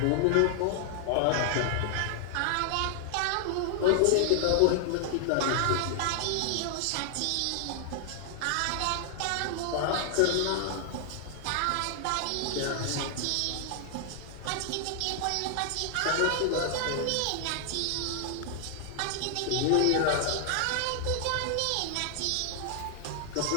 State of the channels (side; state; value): both; different; correlation 0.00